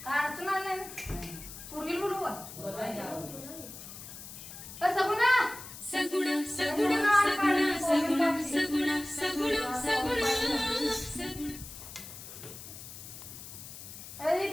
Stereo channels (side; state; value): left; noise; hiss, 13 dB below the sound